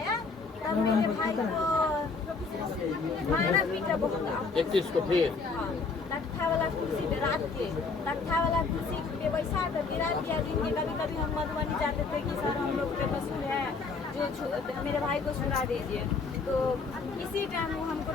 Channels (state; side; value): quieter; right; 4.5 dB